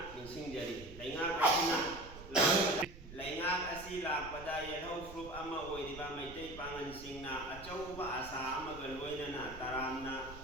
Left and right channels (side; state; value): right; noise; rumble, 15 dB below the sound